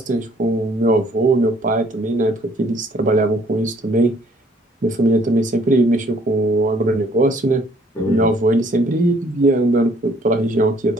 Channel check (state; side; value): normal; both; correlation 0.61